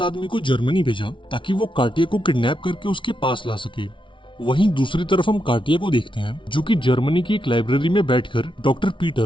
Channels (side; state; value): right; late; 0.24 ms